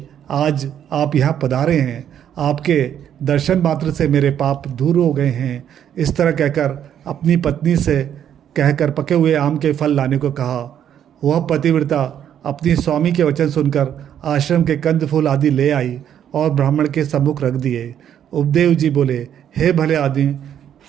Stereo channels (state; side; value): quieter; left; 9.7 dB